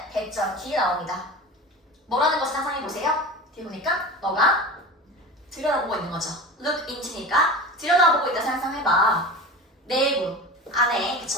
대점 뒤에 나옵니다. 뭐라는 것을 상상해보세요? 뒤에 보니까 너가 들여다보고 있는 거죠. look into니까 들여다보고 있다 상상해봐. 내부, 안에,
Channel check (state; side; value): normal; both; correlation 0.32